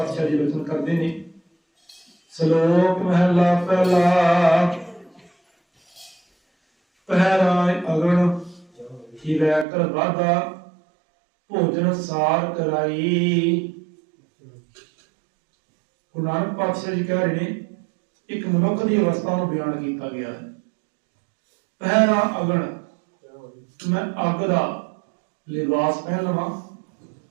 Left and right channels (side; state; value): left; drops out; at 9.7 s